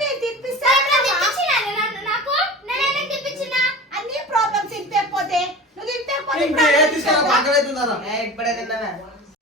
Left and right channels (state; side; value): normal; both; correlation 0.35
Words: తినిపిస్తా. నాకు నేనే తినిపించిన అన్ని ప్రాబ్లమ్స్ తినిపోతే నువ్వు